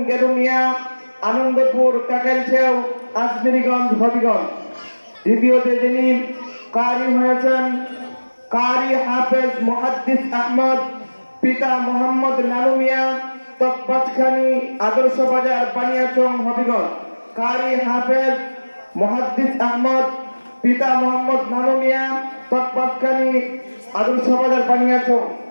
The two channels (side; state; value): both; inverted; correlation -1.00